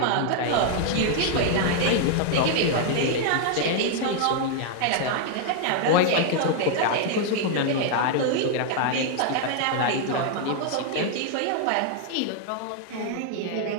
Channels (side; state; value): both; different; correlation 0.00